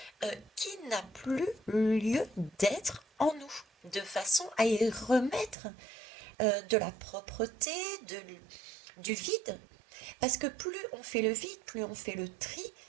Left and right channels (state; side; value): drops out; left; at 5.6 s